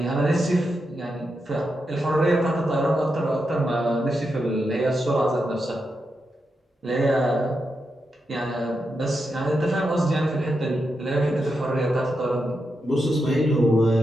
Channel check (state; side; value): normal; both; correlation 0.86